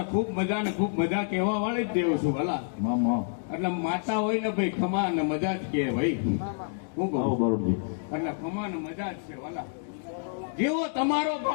ખૂબ મજા ને ખૂબ મજા કહેવા વાળી જ દેવ છું વાલા. એટલે માતા હોય ને ભાઈ ખમા ને મજા જ કે ભાઈ, હું કહું એટલે ખમા ને મજા જ છે વાલા. જેવો તમારો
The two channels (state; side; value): silent; right; digital silence